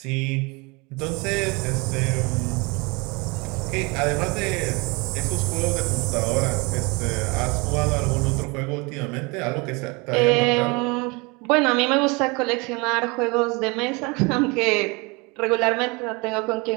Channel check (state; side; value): quieter; left; 27.5 dB